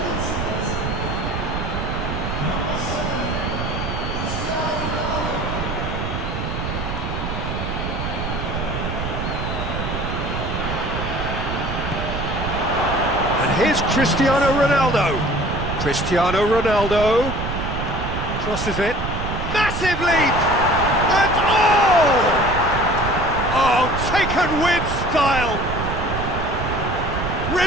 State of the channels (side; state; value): right; noise; rumble, 4 dB below the sound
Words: And here's Cristiano Ronaldo. Cristiano Ronaldo crosses it. Massive leap! And oh! Oh, taken with style.